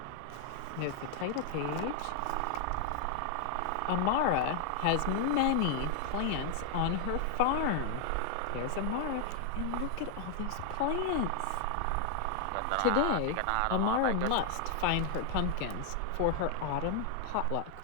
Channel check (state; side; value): different; both; correlation 0.00